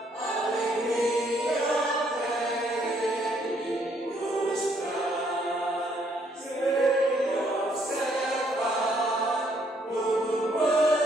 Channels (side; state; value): both; normal; correlation 0.69